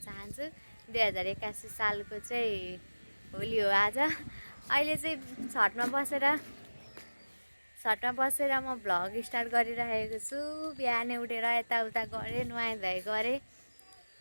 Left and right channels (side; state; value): both; inverted; correlation -1.00